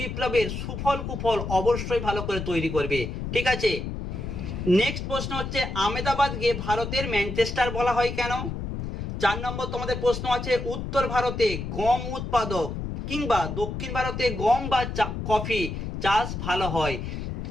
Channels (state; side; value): noise; left; rumble, 5 dB below the sound